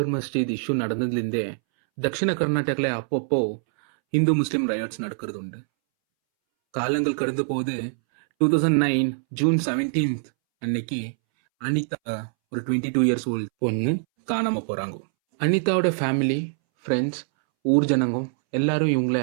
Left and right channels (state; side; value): silent; left; 63 dB below the other